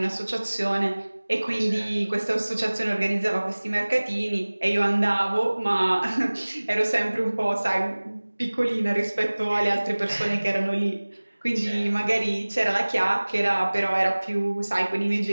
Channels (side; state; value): both; inverted; correlation -1.00